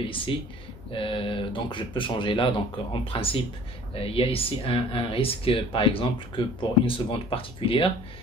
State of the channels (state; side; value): normal; both; correlation 0.51